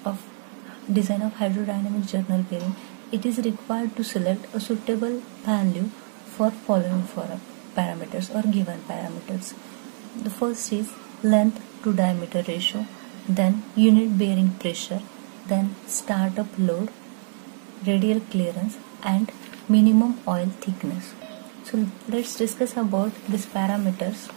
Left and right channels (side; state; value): left; silent; 62 dB below the other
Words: of design of hydrodynamic journal bearing, it is required to select a suitable value for following parameters or given parameters. The first is length to diameter ratio, then unit bearing pressure, then startup load, radial clearance and minimum oil thickness. So let's discuss about these parameters